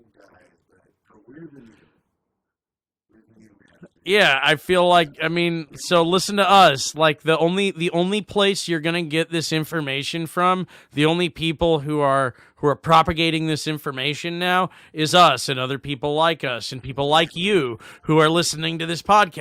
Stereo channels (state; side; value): identical; both; correlation 1.00